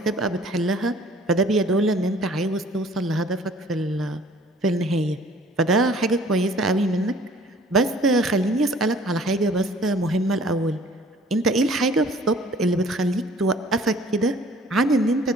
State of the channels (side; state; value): both; normal; correlation 0.53